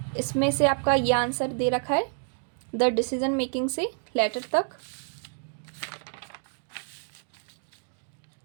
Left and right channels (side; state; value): left; silent; 58 dB below the other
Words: इसमें से आपका ये आंसर दे रखा है द डिसीजन मेकिंग से लेटर तक।